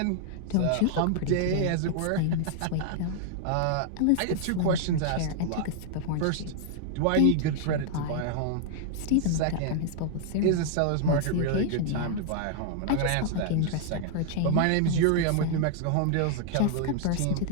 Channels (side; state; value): both; different; correlation -0.01